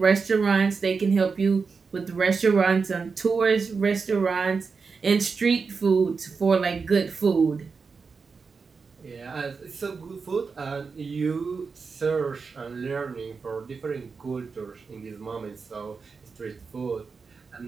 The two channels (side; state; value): left; quieter; 5.0 dB